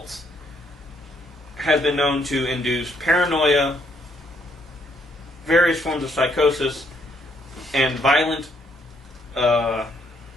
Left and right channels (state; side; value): normal; both; correlation 0.71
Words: has been known to induce paranoia, various forms of psychosis, and violent